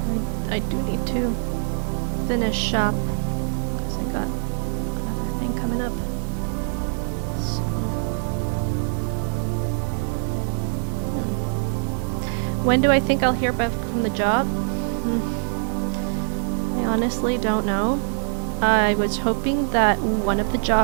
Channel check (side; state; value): left; silent; 63 dB below the other